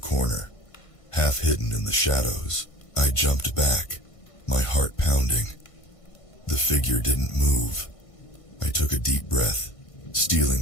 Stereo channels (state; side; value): late; right; 1.5 ms